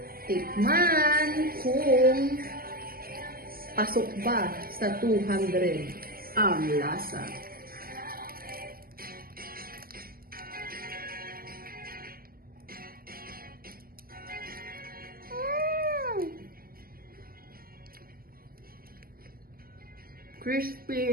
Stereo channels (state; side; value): late; left; 0.43 ms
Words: tikman kung pasok ba sa 200 ang lasa.